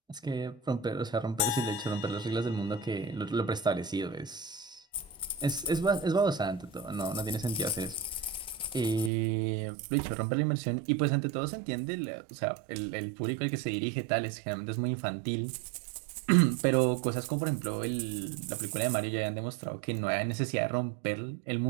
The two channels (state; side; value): drops out; left; at 9.1 s